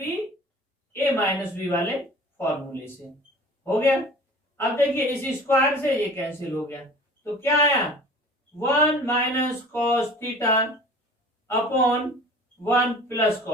A minus B वाले फॉर्मूले से हो गया। अब देखिए, इस स्क्वायर से ये कैंसिल हो गया, तो क्या आया? 1 minus cos theta upon 1 plus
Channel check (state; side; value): normal; both; correlation 0.44